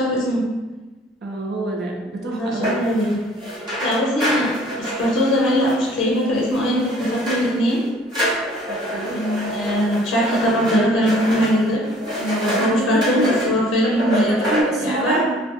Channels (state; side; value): normal; both; correlation 0.54